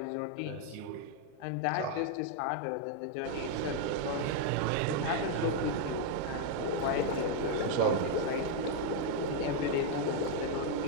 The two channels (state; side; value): different; both; correlation -0.01